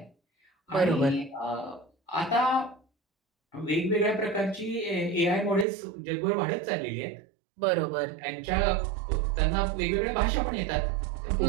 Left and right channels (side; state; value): left; drops out; at 5.7 s